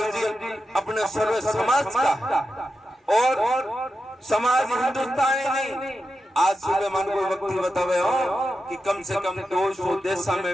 जी अपने सर्व समाज का और समाज हिंदुस्तानी नहीं। आज सुबह मन को व्यक्ति बतावे हो कि कम से कम 200 देशों में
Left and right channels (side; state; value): both; normal; correlation 0.89